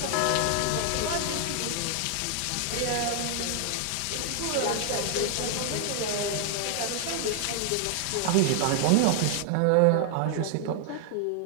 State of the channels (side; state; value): both; different; correlation 0.00